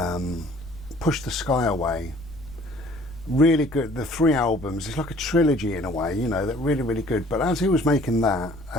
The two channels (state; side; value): noise; left; rumble, 19 dB below the sound